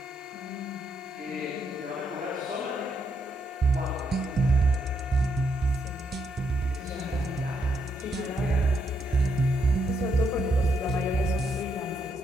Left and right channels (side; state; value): both; normal; correlation 0.77